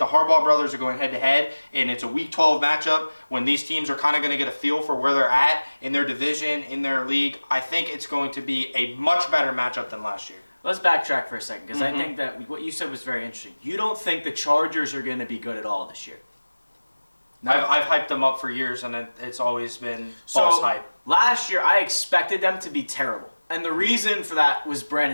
Harbaugh brothers are going head-to-head, and it's a Week 12 matchup when these teams are kind of going to get a feel for where they're at in their division, in their league, I think it's going to be a much better matchup than last year. Let's backtrack for a second, because I think that what you said was very interesting. You don't think the Chargers are going to be good at all this year? No. I've hyped them up for years, and it's always been false hype. Last year, I expected them to be terrible. And the reason for that was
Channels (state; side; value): inverted; both; correlation -1.00